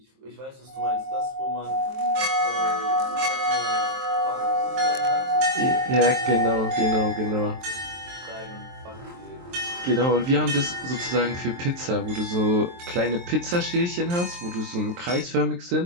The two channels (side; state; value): left; late; 23 ms